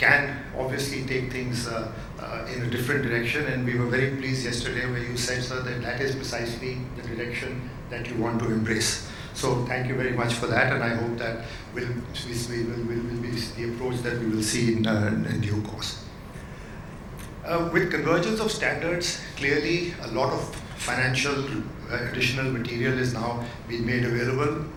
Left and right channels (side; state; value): both; identical; correlation 1.00